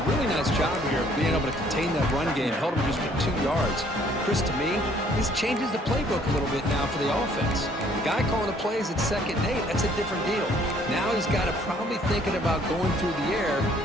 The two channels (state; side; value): normal; both; correlation 0.61